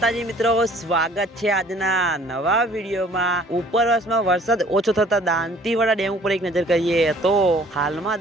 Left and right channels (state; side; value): normal; both; correlation 0.54